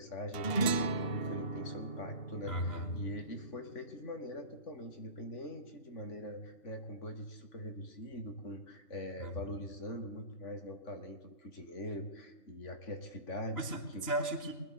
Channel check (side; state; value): right; late; 2.8 ms